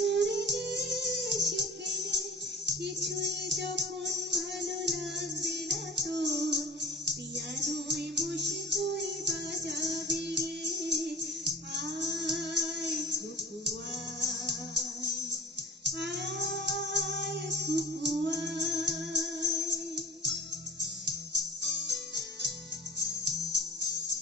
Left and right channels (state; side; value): normal; both; correlation 0.41